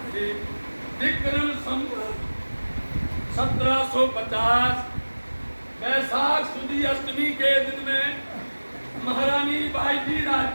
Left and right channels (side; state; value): both; inverted; correlation -1.00